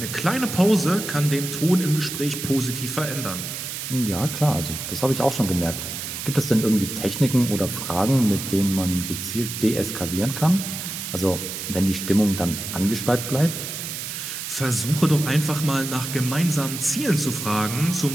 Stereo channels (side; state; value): right; noise; hiss, 6 dB below the sound